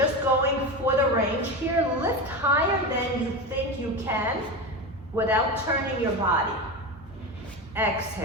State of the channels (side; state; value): both; normal; correlation 0.22